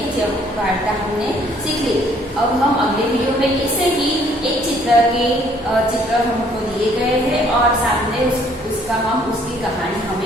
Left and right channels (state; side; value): normal; both; correlation 0.62